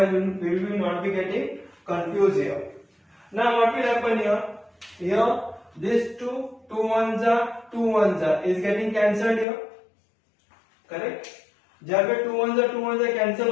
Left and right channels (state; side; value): drops out; right; at 9.5 s